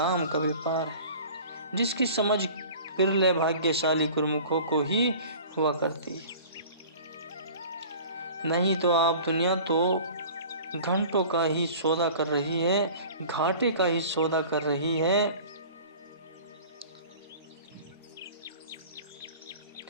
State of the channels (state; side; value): inverted; both; correlation -0.43